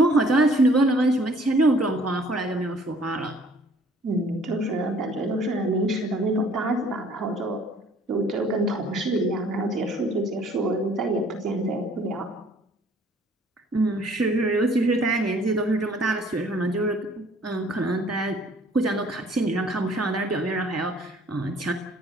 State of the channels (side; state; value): both; normal; correlation 0.57